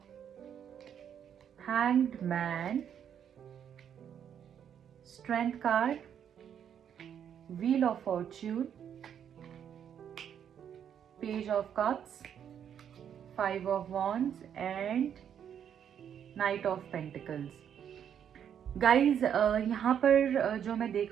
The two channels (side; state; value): left; quieter; 8.8 dB